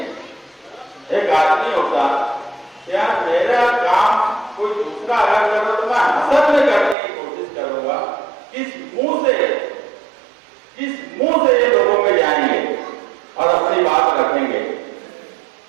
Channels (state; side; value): drops out; left; at 7.0 s